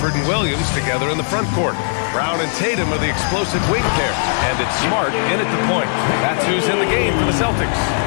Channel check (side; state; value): right; silent; 64 dB below the other